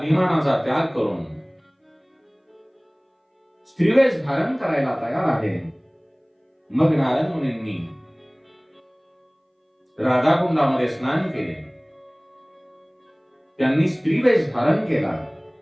त्याग करून स्त्रीवेश धारण करायला तयार आहे. मग नारद मुनींनी राधाकुंडामध्ये स्नान केले, त्यांनी स्त्रीवेश धारण केला.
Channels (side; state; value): both; identical; correlation 1.00